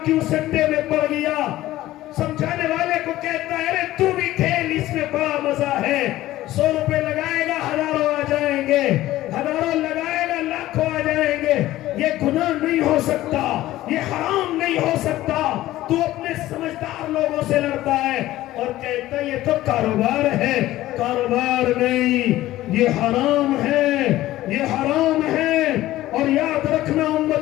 کیوں سٹے میں پڑ گیا؟ سمجھانے والے کو کہتا ہے ارے تو بھی کھیل، اس میں بڑا مزہ ہے، 100 روپے لگائے گا 1000 آ جائیں گے، 1000 لگائے گا لاکھوں آ جائیں گے۔ یہ گناہ نہیں ہو سکتا، یہ حرام نہیں ہو سکتا۔ تو اپنے سمجھدار لوگوں سے لڑتا ہے اور کہتا ہے یہ تو کاروبار ہے۔ کاروبار نہیں، یہ حرام ہے، یہ حرام ہے۔ اور یاد رکھنا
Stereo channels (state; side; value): quieter; right; 15.5 dB